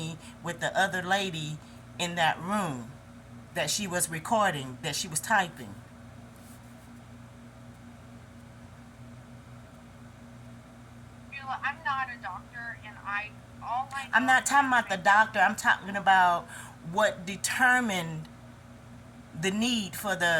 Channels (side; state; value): both; identical; correlation 1.00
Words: with the other lady in that room, that she was recording, that she was typing. Sheila, I'm not a doctor, and all I I'm know not is talking the about the information. doctor. I'm talking about what determined the need for